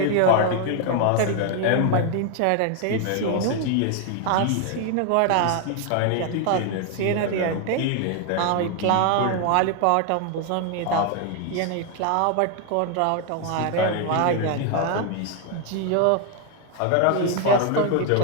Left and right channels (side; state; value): both; different; correlation 0.01